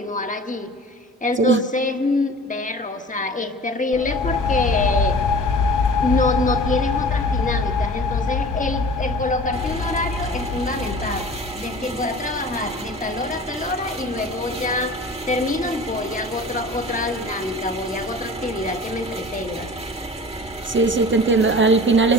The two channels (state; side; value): normal; both; correlation 0.41